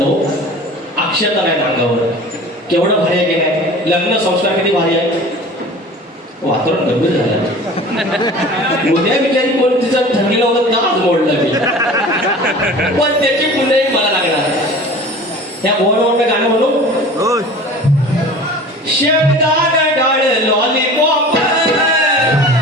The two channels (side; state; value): both; normal; correlation 0.40